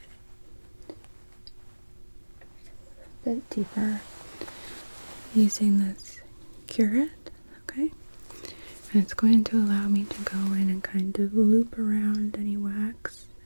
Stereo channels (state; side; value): inverted; both; correlation -1.00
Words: a bit deeper using this curette, okay? And it's going to allow me to go in and kind of loop around any wax